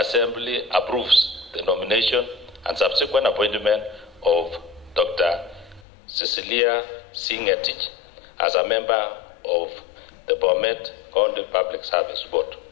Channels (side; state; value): right; drops out; at 5.9 s